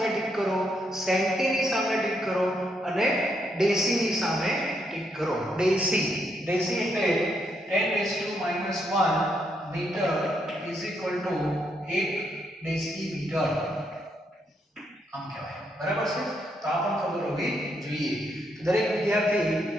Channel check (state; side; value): normal; both; correlation 0.77